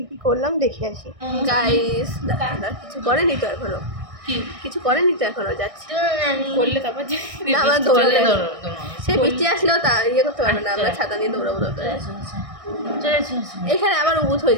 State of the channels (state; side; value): late; left; 1.6 ms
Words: কী করলাম দেখে আসি। গাইস দাদা কিছু করেনি তো এখনো, কিছু করেনি তো এখনো, যাচ্ছে করলে তারপর না আমরা দৌড়ালে সে বৃষ্টি আসলেও তা ইয়ে করতে পারবে না, আমরা ছাতা নিয়ে দৌড়াবো। এখানে আবার উবুত হয়ে